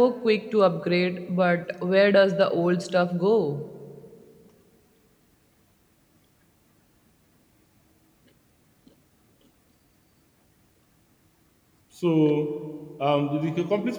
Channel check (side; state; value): both; identical; correlation 1.00